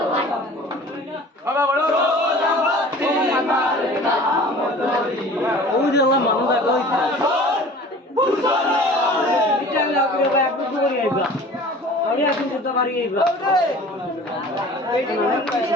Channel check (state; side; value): normal; both; correlation 0.44